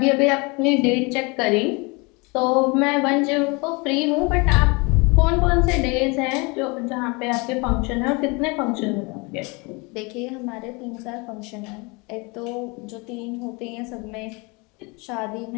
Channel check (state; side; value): quieter; right; 28.2 dB